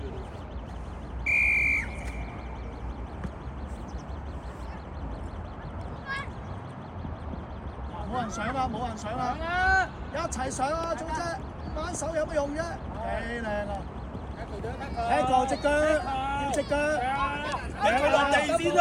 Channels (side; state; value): both; identical; correlation 1.00